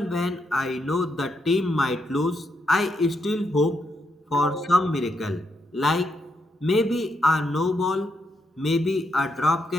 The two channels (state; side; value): normal; both; correlation 0.80